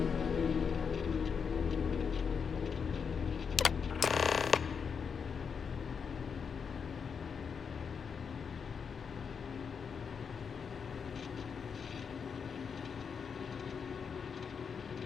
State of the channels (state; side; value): quieter; right; 6.3 dB